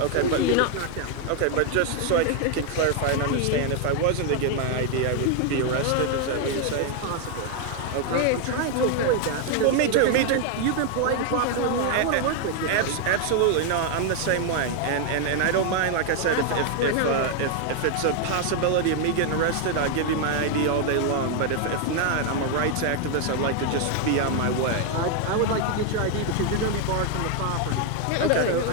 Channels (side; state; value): both; different; correlation 0.01